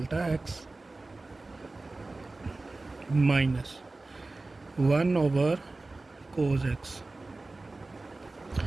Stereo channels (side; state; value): left; quieter; 3.2 dB